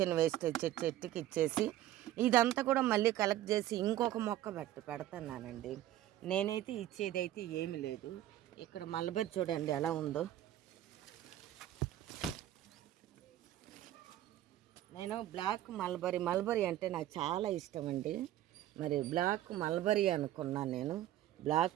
వేస్టేజ్ చెట్టుకి ఇచ్చేసి ఇదంతా కూడా మళ్ళీ కలెక్ట్ చేసి ఇంకొక మొక్క పెడుతున్నానండి. నేనైతే ఇచ్చేదైతే ఏమి లేదు. ఇక్కడ మల్బరీ చూడండి ఎలా ఉందో. నేను బ్లాక్ మల్బరీ అంటే నాకు చాలా ఇష్టం అండి. మరి బ్లాక్ మల్బరీ అనుకున్నాను నేను.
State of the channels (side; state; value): left; quieter; 13.5 dB